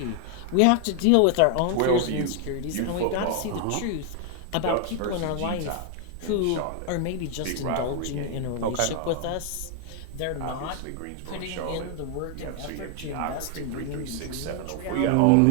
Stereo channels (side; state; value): both; different; correlation 0.00